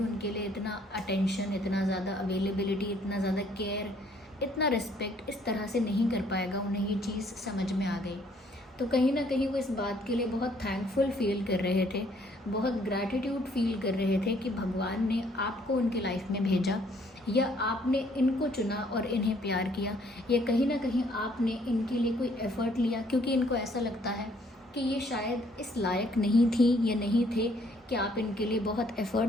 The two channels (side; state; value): both; normal; correlation 0.64